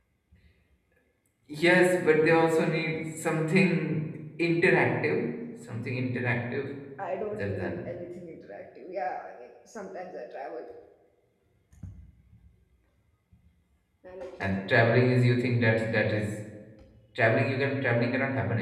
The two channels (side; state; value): both; identical; correlation 1.00